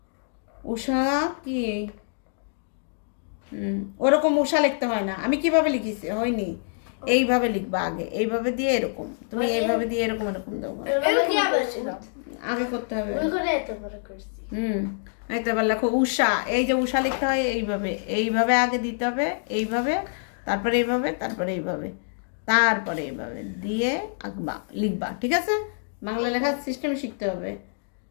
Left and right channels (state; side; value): silent; right; digital silence